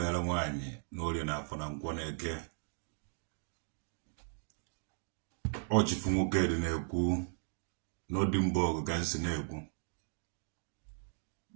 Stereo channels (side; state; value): left; silent; digital silence